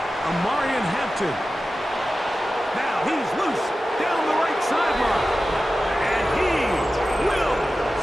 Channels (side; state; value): both; normal; correlation 0.94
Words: Amarian Hampton. Now he's loose down the right sideline. And he will